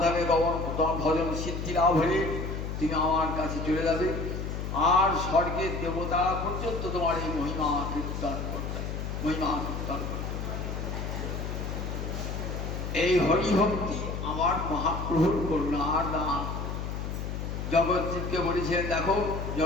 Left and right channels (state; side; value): noise; left; hum, 4 dB below the sound